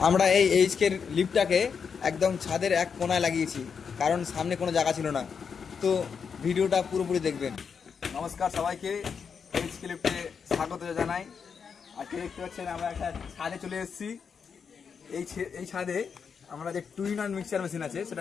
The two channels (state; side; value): quieter; right; 6.3 dB